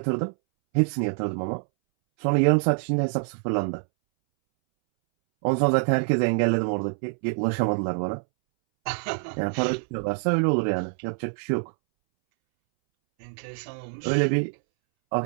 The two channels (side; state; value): left; silent; 61 dB below the other